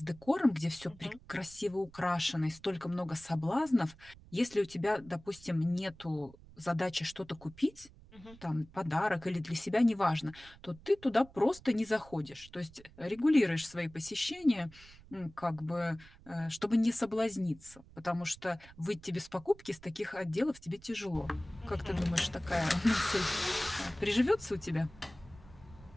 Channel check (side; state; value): right; noise; rumble, 22 dB below the sound